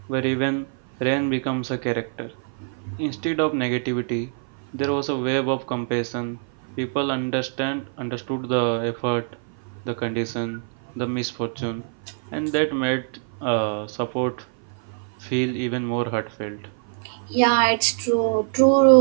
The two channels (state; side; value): silent; left; 55 dB below the other